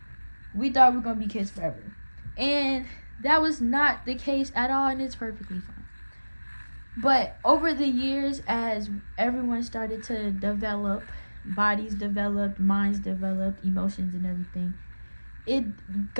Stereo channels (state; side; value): inverted; both; correlation -1.00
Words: We thought we were going to be kids forever, and that was not the case at all, and it's perfectly fine. But over the years, as everyone started to develop, bodies developed, minds developed, emotions and everything, it